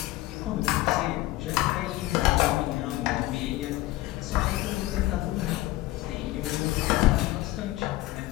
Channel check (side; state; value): right; quieter; 17.6 dB